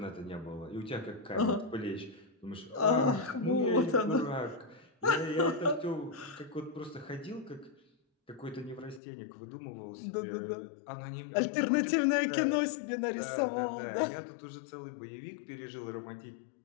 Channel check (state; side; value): drops out; right; at 9.0 s